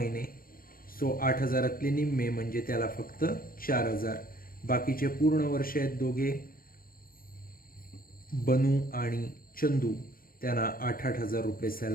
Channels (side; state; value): right; late; 0.42 ms